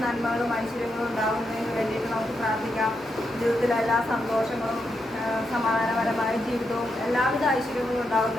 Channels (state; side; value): normal; both; correlation 0.83